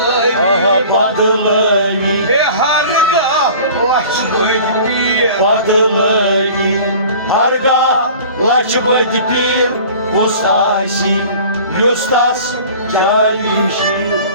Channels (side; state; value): both; inverted; correlation -0.44